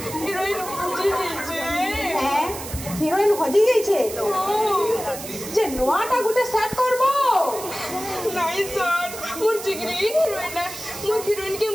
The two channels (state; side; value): noise; right; hiss, 11 dB below the sound